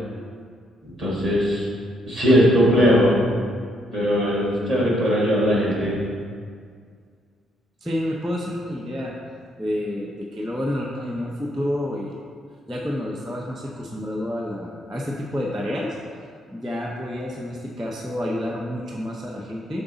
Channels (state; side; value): normal; both; correlation 0.74